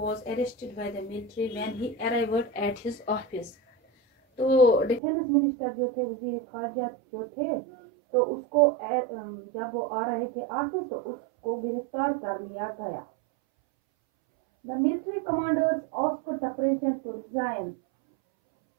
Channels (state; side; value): drops out; left; at 5.0 s